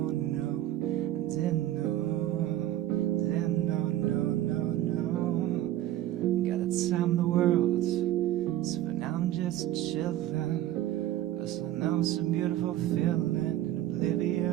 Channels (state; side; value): quieter; left; 13.6 dB